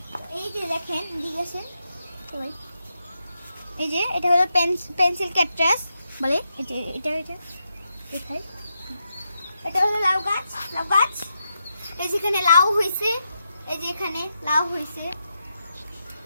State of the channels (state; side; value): inverted; both; correlation -0.85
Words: এই যে দেখেন, দিকে আসেন সবাই। এই যে এটা হলো পেন্সিল ক্যাকটাস বলে, এটা এটা এটা দেখাই। এটা হলো লাউ গাছ, লাউ গাছ। এই যেখানে লাউ হয়েছে, এই যে এখানে লাউ হয়েছে।